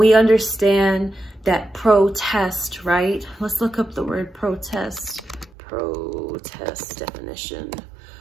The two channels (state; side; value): drops out; left; at 5.5 s